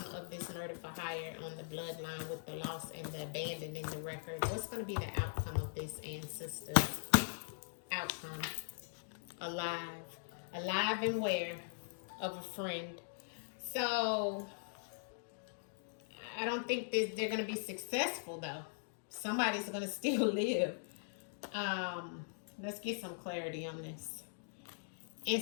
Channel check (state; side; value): silent; right; digital silence